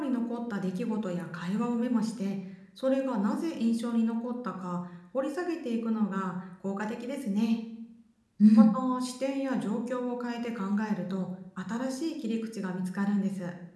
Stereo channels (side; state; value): both; identical; correlation 1.00